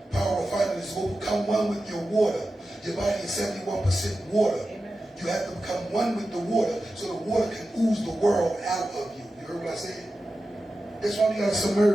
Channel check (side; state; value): both; normal; correlation 0.92